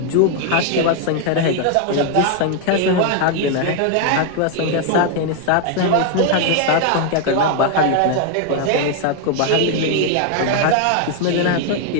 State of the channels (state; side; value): different; both; correlation 0.01